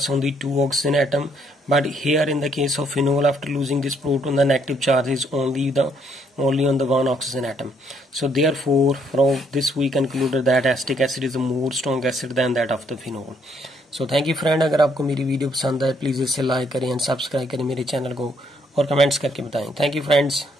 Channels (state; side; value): normal; both; correlation 0.69